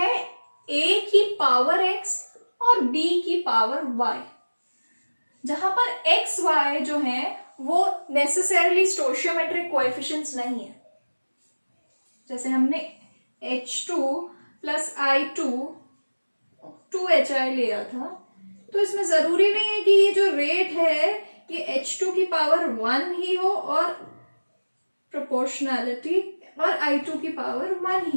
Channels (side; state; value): both; inverted; correlation -1.00